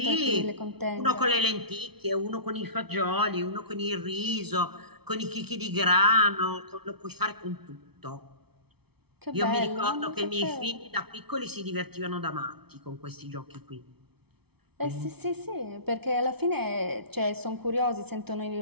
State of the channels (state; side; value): late; left; 0.97 ms